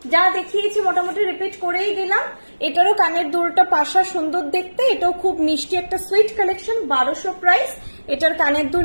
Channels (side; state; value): both; inverted; correlation -1.00